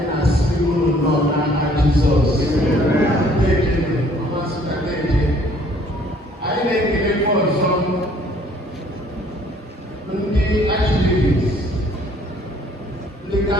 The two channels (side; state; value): both; normal; correlation 0.59